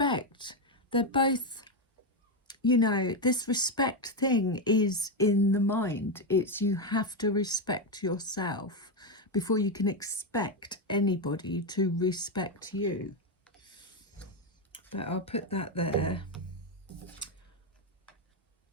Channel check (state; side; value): normal; both; correlation 0.07